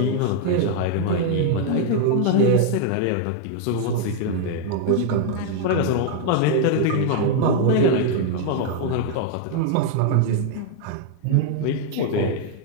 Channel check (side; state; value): both; different; correlation 0.00